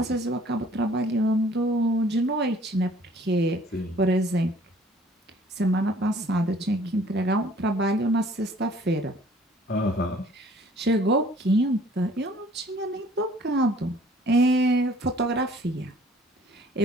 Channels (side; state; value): both; normal; correlation 0.55